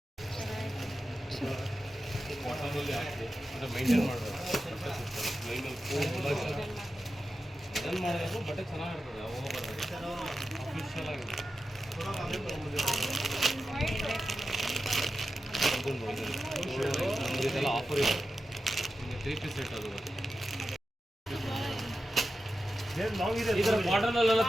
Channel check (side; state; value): both; normal; correlation 0.91